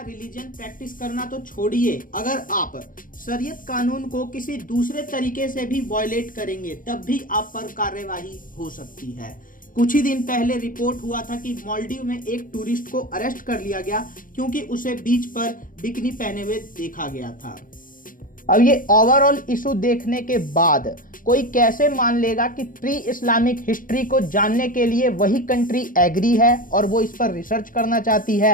रिलीजन प्रैक्टिस करना तो छोड़िए, अगर आप शरीयत कानून को किसी दूसरे तरीके से भी वायलेट करेंगे तब भी आप पर कार्यवाही हो सकती है। कुछ ही दिन पहले रिपोर्ट हुआ था कि मालदीव में एक टूरिस्ट को अरेस्ट कर लिया गया क्योंकि उसे बीच पर बिकिनी पहने हुए देखा गया था। अब ये ओवरऑल इशू देखने के बाद कोई कैसे मान लेगा कि प्री इस्लामिक हिस्ट्री को जानने के लिए वही कंट्री एग्री है और वो इस पर रिसर्च करना चाहती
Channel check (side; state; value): right; late; 0.40 ms